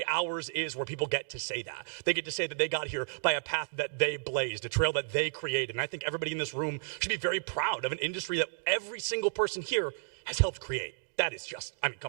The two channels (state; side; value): silent; left; digital silence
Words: ours is, where people get to say that. They get to say that they got here by a path that they blazed, a trail that they created. And I think everybody in this room should be very proud of an industry that every single person here has helped create. That is just, I mean, come